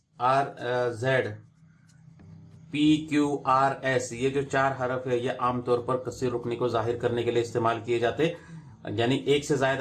rz, pqrs, ये जो 4 हरफ है ये आमतौर पर कसीर रुकनी को जाहिर करने के लिए इस्तेमाल किए जाते, यानी एक से जायद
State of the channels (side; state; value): both; identical; correlation 1.00